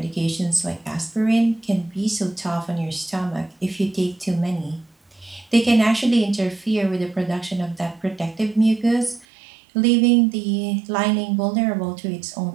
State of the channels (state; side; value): drops out; left; at 9.2 s